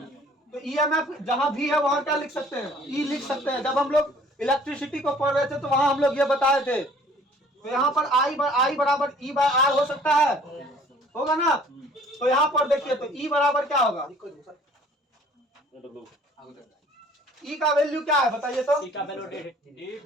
तो EMF जहाँ V है वहाँ क्या लिख सकते हैं, E लिख सकते हैं। जब हम लोग इलेक्ट्रिसिटी को पढ़ रहे थे तो वहाँ हम लोग ये बताए थे। तो यहाँ पर I बराबर E बाय R हो सकता है, होगा ना। तो यहाँ पर देखिए, तो E बराबर क्या होगा, E का वैल्यू क्या है बताइए तो।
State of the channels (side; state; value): both; normal; correlation 0.54